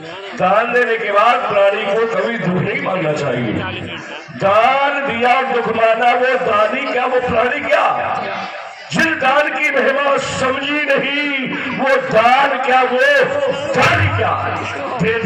दान देने के बाद प्राणी को कभी दुख नहीं मानना चाहिए। दान दिया और दुख माना, वो दानी क्या वो प्राणी क्या? जिन दान की महिमा समझी नहीं, वो दान क्या वो दानी क्या? दे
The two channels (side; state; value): both; identical; correlation 1.00